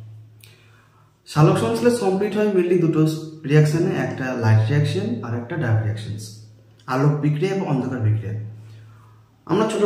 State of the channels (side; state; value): both; identical; correlation 1.00